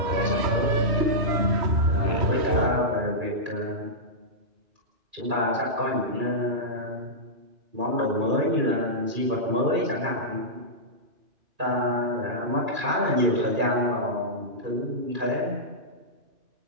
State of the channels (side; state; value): left; late; 2.4 ms